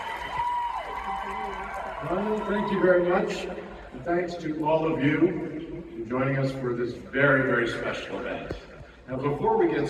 Well, thank you very much. And thanks to all of you for joining us for this very, very special event. Now, before we get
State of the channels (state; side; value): identical; both; correlation 1.00